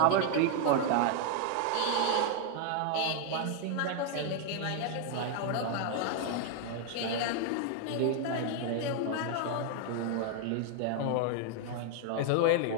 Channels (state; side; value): different; both; correlation 0.00